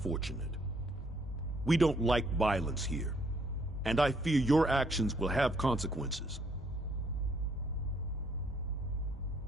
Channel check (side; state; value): both; normal; correlation 0.68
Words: We don't like violence here, and I fear your actions will have consequences.